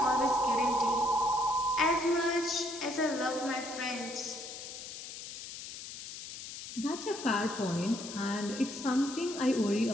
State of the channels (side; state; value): left; noise; hiss, 10 dB below the sound